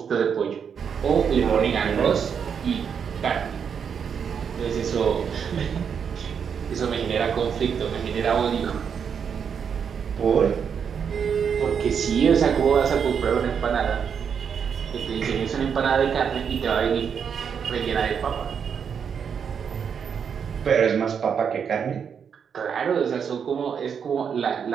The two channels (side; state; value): left; quieter; 7.1 dB